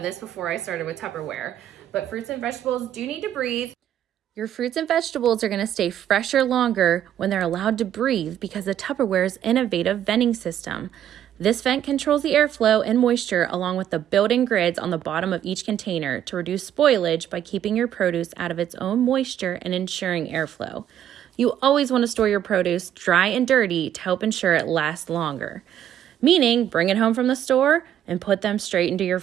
before I started with Tupperware, but fruits and vegetables do need to breathe. Your fruits and vegetables are going to stay fresher longer when they're allowed to breathe because of Tupperware's innovative venting system. This vent controls the airflow and moisture along with the built-in grids on the bottom of each container to reduce spoilage by keeping your produce out of its own moisture and ensuring airflow. You always want to store your produce dry and dirty to help ensure it lasts longer. Meaning, bring it home from the store and put them straight into your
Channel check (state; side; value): quieter; left; 10.6 dB